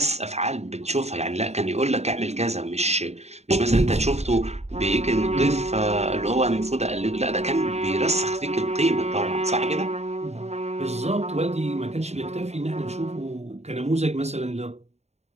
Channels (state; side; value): late; left; 0.32 ms